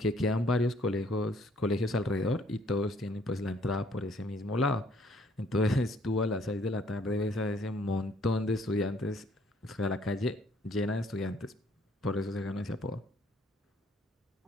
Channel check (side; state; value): both; normal; correlation 0.62